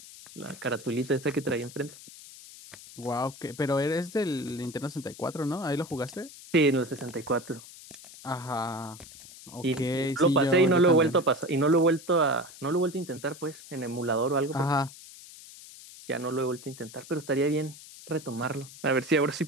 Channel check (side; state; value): left; noise; hiss, 17 dB below the sound